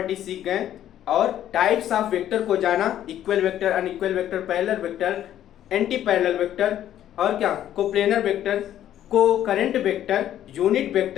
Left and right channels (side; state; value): right; quieter; 11.5 dB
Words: सीख गए, और टाइप्स ऑफ वेक्टर को जाना, equal vector, unequal vector, parallel vector, anti parallel vector, और क्या कोप्लेनर वेक्टर, को current vector, unit